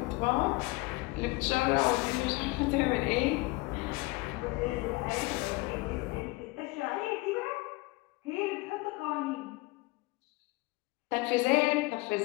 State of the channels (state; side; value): quieter; right; 23.7 dB